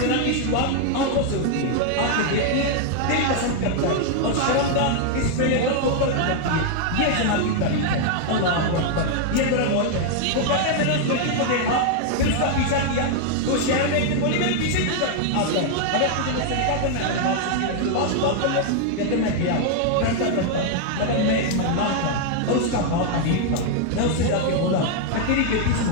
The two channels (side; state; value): both; different; correlation 0.00